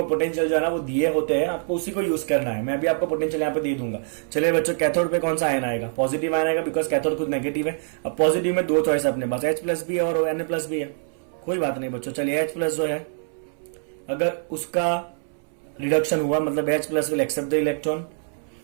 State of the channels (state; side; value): silent; left; 62 dB below the other